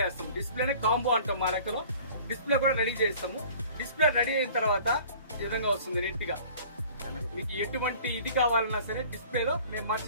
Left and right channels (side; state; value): both; inverted; correlation -0.48